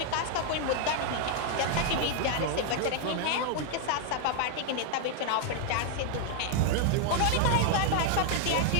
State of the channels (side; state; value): both; different; correlation 0.00